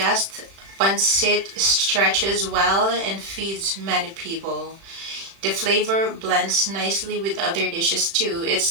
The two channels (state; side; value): late; left; 36 ms